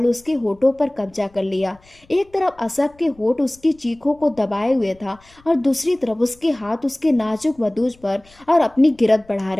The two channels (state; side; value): noise; left; rumble, 29 dB below the sound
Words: उसके होठों पर कब्जा कर लिया। एक तरफ असफ के होठ उसकी चीखों को दबाए हुए था और दूसरी तरफ उसके हाथ उसके नाजुक वदूज पर और अपनी गिरफ्त बढ़ा